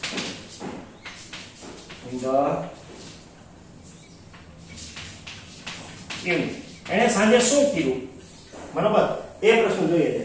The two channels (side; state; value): both; identical; correlation 1.00